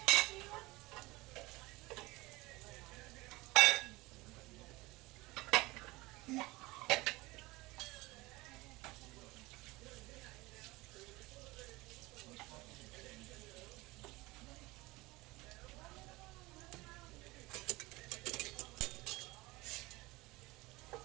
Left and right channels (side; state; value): left; quieter; 21.4 dB